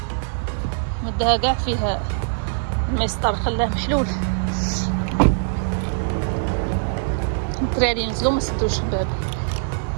مدها كاع فيه المسطر خلاه محلول. الدراري نزلوا ما سدوش الباب.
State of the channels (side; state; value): left; silent; digital silence